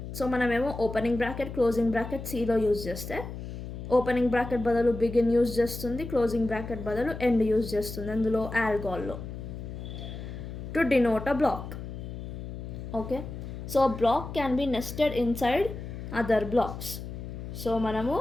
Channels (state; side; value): noise; left; hum, 9 dB below the sound